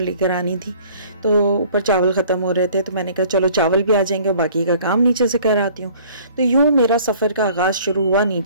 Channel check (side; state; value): both; inverted; correlation -0.53